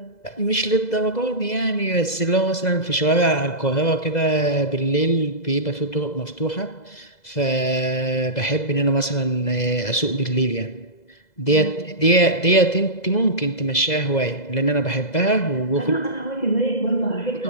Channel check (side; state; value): right; late; 2.0 ms